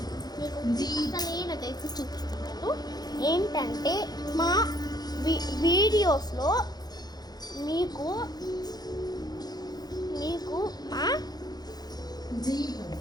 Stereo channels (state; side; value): late; right; 0.19 ms